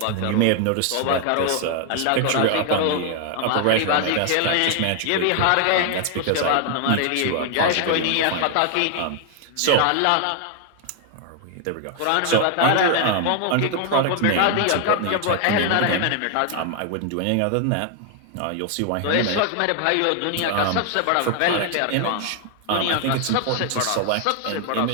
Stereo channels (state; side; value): different; both; correlation 0.00